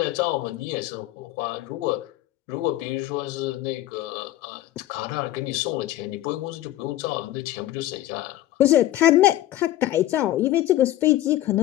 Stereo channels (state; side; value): quieter; right; 14.4 dB